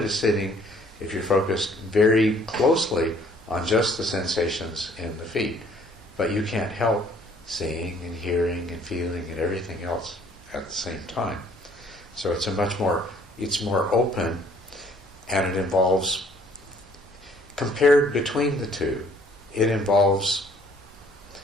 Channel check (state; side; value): normal; both; correlation 0.59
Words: sitting if you're focused very closely on just the sensations in the feet, but you can't help seeing and hearing and feeling and everything else at the same time. So it's more open, and it involves, compared between the two, it involves